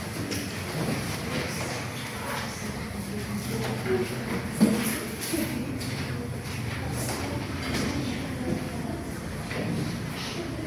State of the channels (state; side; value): identical; both; correlation 1.00